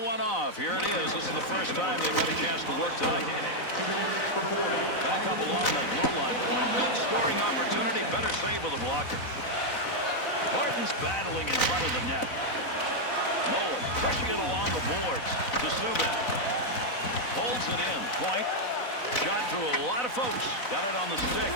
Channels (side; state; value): right; late; 4.0 ms